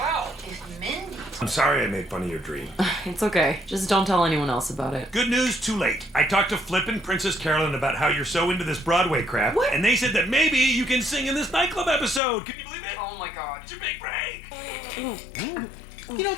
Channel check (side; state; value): right; drops out; at 12.2 s